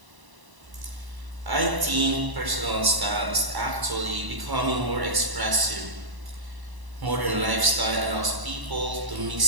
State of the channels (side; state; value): left; late; 1.0 ms